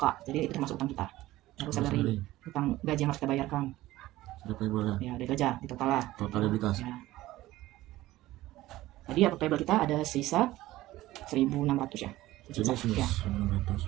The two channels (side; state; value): left; quieter; 16.6 dB